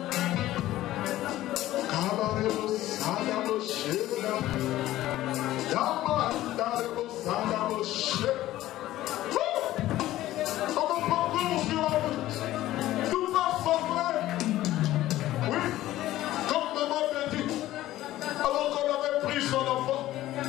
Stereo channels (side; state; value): right; quieter; 15.0 dB